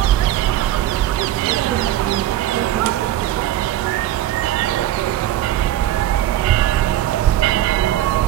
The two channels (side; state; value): left; quieter; 12.9 dB